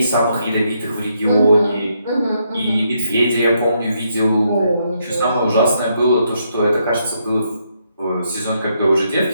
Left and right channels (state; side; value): inverted; both; correlation -0.77